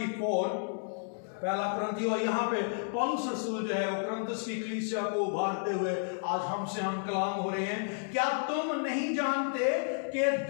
पहला कुरिन्थी। और यहाँ पे पौलुस रसूल जो है वो कुरिन्थस की कलीसिया को उभारते हुए आज हमसे हम कलाम हो रहे हैं। क्या तुम नहीं जानते कि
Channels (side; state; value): right; silent; digital silence